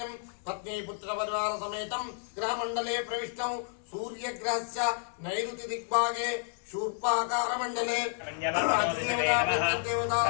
पत्नी पुत्रपरिवार समेतं ग्रहमण्डले प्रविष्टं सूर्यग्रहस्य नैऋति दिग्भागे शूर्पाकारमण्डले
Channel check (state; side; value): silent; right; 57 dB below the other